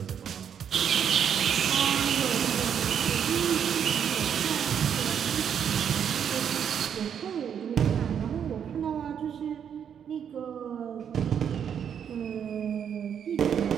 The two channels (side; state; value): left; quieter; 8.2 dB